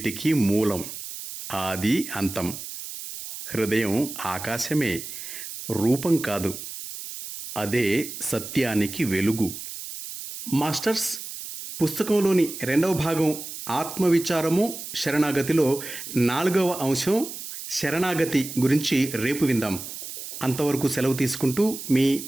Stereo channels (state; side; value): noise; right; hiss, 10 dB below the sound